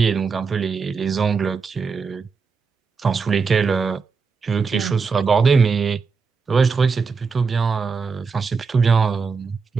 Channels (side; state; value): left; quieter; 5.1 dB